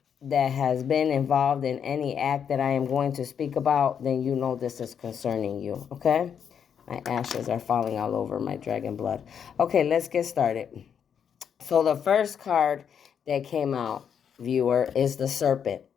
has been involved in any act that I am going to speak about, then you know this is concerning you, okay? My ashes are falling all over my dragon blood. Okay, let's get started. So the first card that came out, viewer, is the serpent,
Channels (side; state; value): right; quieter; 7.8 dB